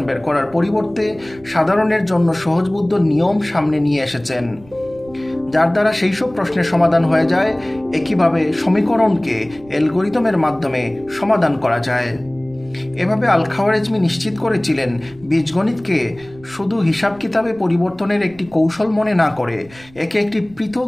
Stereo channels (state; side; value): noise; right; rumble, 24 dB below the sound